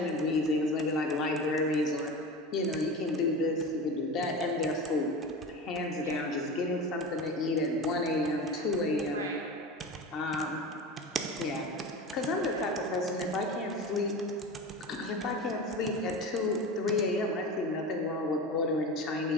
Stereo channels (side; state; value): both; normal; correlation 0.29